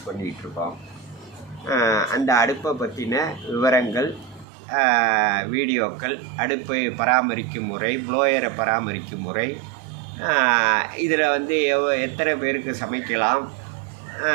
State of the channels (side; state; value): left; drops out; at 4.5 s